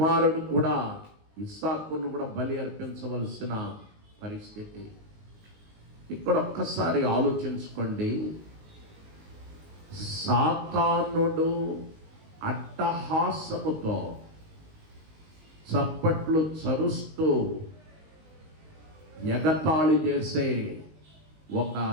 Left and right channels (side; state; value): left; late; 19 ms